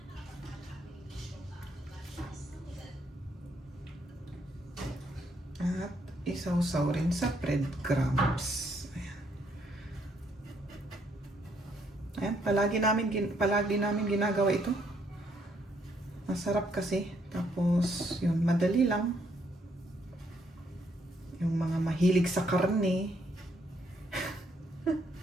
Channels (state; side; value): normal; both; correlation 0.71